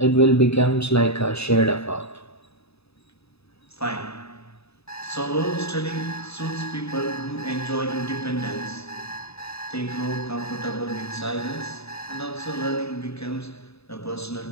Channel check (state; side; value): late; right; 0.79 ms